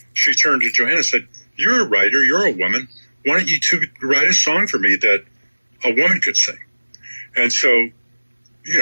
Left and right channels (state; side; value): inverted; both; correlation -1.00